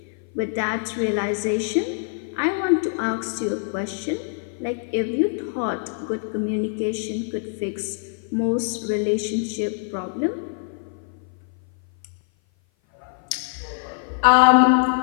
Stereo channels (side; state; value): right; silent; 56 dB below the other